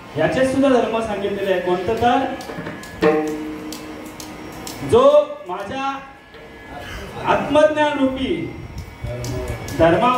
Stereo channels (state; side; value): identical; both; correlation 1.00